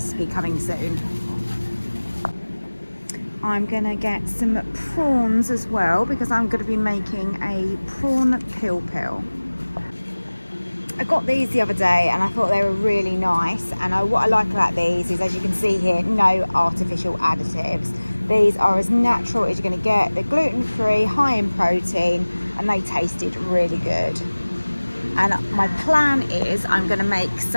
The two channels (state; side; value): inverted; both; correlation -1.00